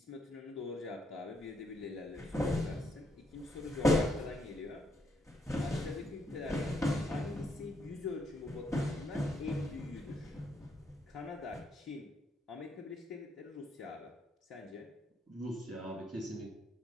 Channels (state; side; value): normal; both; correlation 0.75